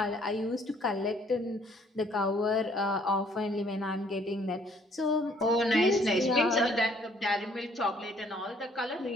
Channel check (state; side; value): normal; both; correlation 0.62